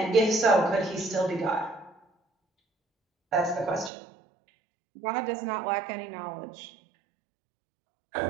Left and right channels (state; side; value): drops out; left; at 3.9 s